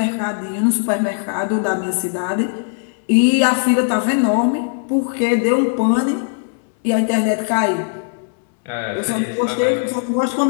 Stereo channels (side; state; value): right; silent; digital silence